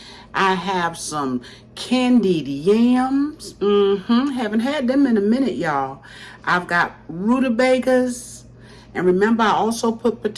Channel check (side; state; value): both; identical; correlation 1.00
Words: I have some candied yams. Haven't had them in a minute, y'all. I've got rutabagas. And remember, I also put